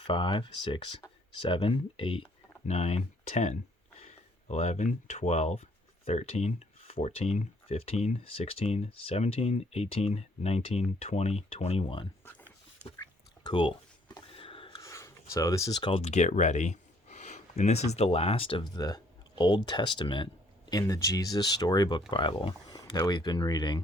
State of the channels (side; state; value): both; normal; correlation 0.63